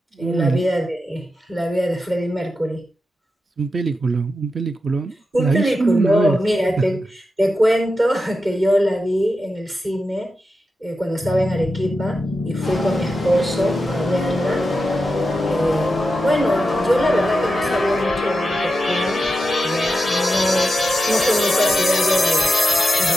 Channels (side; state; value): both; normal; correlation 0.89